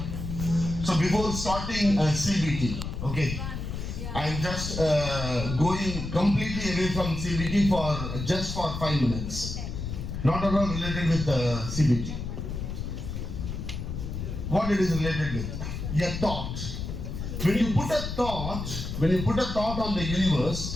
So before starting CBT, okay, I'm just going completely away from CBT for just for 5 minutes. Not at all related with CBT. What it is related with? A thought. When you put a thought on the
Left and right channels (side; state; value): left; noise; rumble, 5 dB below the sound